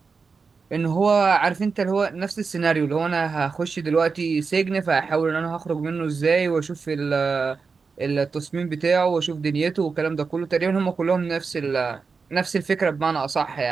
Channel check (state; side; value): quieter; left; 4.9 dB